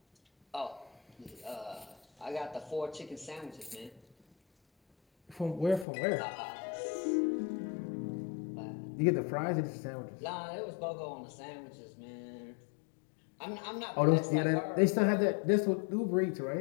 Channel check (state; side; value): drops out; right; at 5.9 s